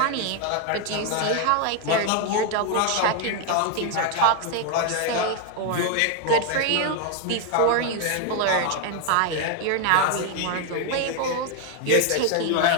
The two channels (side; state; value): both; different; correlation 0.01